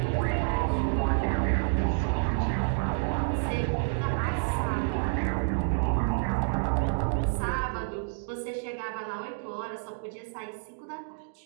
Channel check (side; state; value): left; silent; digital silence